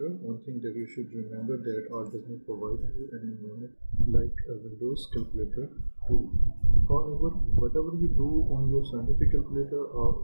One thing that you should remember that R does not provide you an environment like a Windows calculator tool. However, whatever you do on your scientific calculator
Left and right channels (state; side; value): inverted; both; correlation -1.00